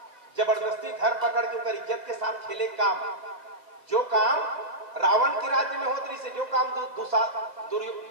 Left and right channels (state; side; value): late; left; 2.1 ms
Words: जबरदस्ती धर पकड़ के उनकर इज्जत के साथ खेले काम, जो काम रावण के राज्य में होती से, जो काम